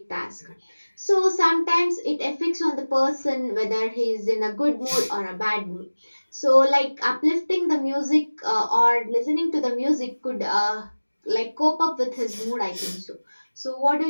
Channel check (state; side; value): inverted; both; correlation -1.00